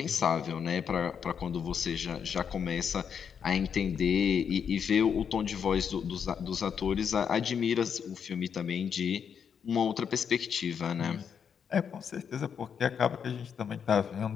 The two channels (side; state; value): right; quieter; 7.3 dB